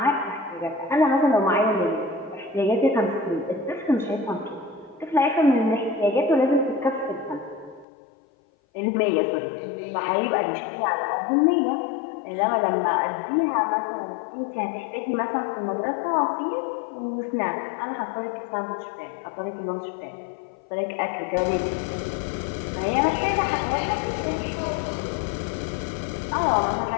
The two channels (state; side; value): drops out; right; at 7.9 s